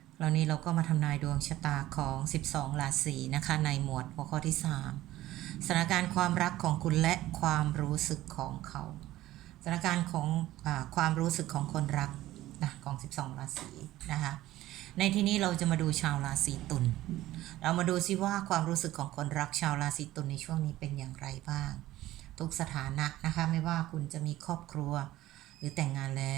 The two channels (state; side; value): quieter; left; 15.5 dB